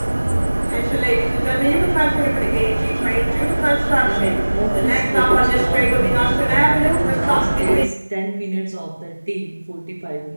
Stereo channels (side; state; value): both; inverted; correlation -1.00